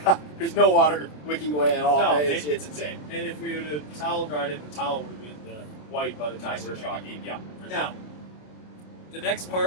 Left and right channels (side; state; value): right; late; 27 ms